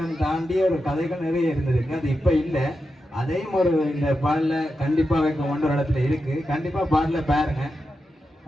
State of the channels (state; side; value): normal; both; correlation 0.89